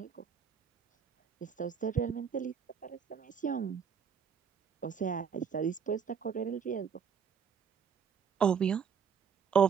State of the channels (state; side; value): quieter; left; 7.0 dB